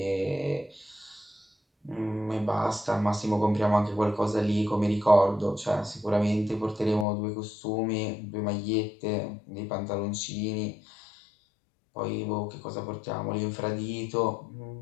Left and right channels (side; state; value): right; drops out; at 7.1 s